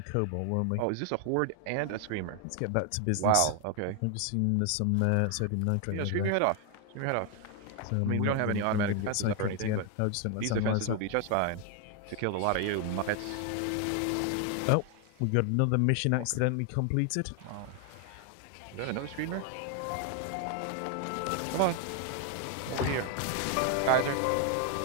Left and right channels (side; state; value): both; different; correlation 0.01